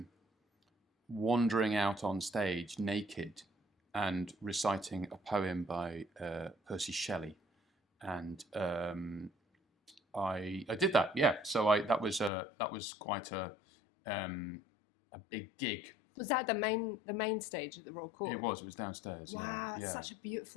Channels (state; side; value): drops out; right; at 12.3 s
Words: wandering out on stage naked and reciting a poem by Percy Shelley, and I did that. Yeah, so that was quite a big gig. Was that the main stage at the Royal Court? It was downstairs. Wow, yeah, it's such a